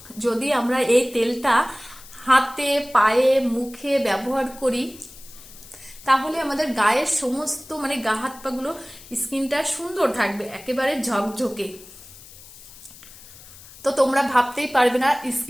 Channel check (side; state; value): left; noise; hiss, 19 dB below the sound